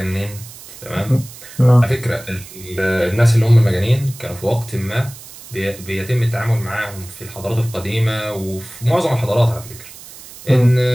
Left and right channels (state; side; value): noise; right; hiss, 17 dB below the sound